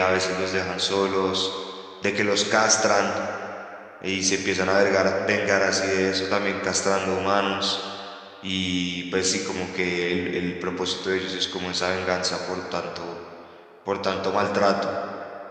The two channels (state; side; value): identical; both; correlation 1.00